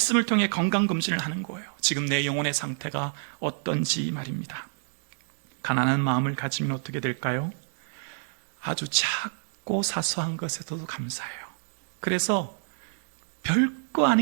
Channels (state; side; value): silent; left; digital silence